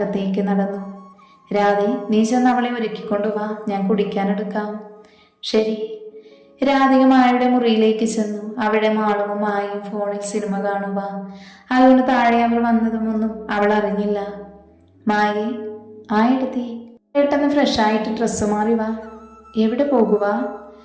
നടന്നു. രാധേ, നീ ചെന്ന് അവളെ ഒരുക്കിക്കൊണ്ടുവാ, ഞാൻ കുടിക്കാനെടുക്കാം. ശരി. രാധിക മായയുടെ മുറിയിലേക്ക് ചെന്നു. അവിടെ മാളുവും മായയും ഫോണിൽ സിനിമ കാണുക. അതുകൊണ്ട് താഴെ അവർ വന്നതുമൊന്നും അവൾ അറിഞ്ഞില്ല. മായേ, എടുത്തി പെട്ടെന്ന് ഫ്രഷായിട്ട് ഡ്രസ്സ് മാറി വാ. എവിടെ പോകുക?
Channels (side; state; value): both; identical; correlation 1.00